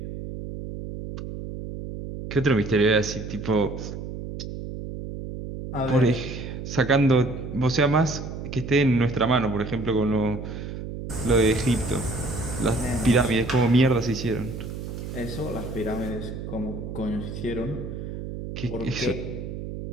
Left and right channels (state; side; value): noise; right; hum, 8 dB below the sound